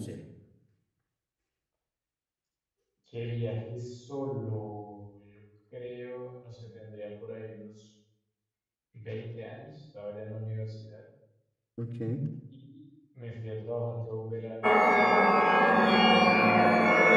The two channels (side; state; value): both; identical; correlation 1.00